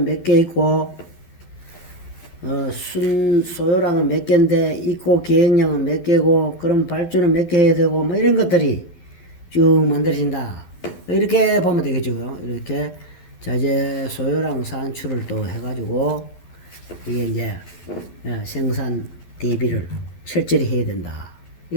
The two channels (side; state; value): right; late; 12 ms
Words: 몇 개 있고 소요량은 몇 개인데 있고 계획량은 몇 개고 그럼 발주는 몇 개 해야 되고 뭐 이런 것들이 쭉 만들어진다. 이렇게 보면 되겠죠. 이렇게 자재 소요량 산출을 또 해가지고 이게 이제 생산 대비를 철저히 해야 된다.